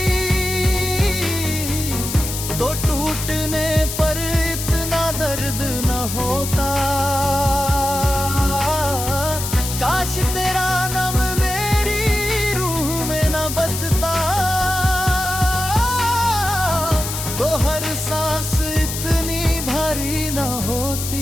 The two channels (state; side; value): noise; left; hiss, 6 dB below the sound